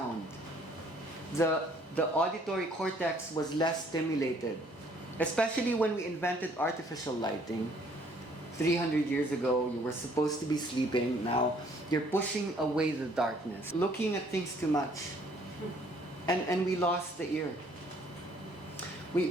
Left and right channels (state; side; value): normal; both; correlation 0.61